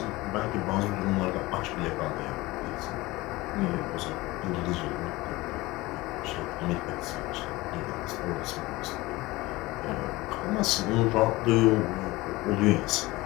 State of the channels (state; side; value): quieter; right; 20.4 dB